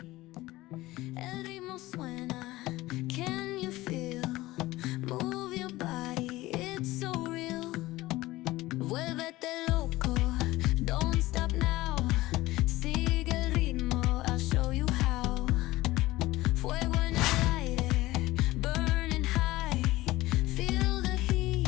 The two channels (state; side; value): quieter; right; 18.2 dB